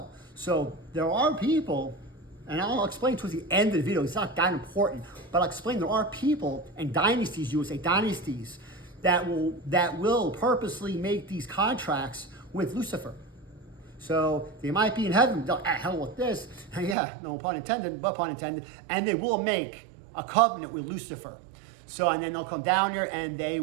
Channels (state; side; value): drops out; left; at 16.9 s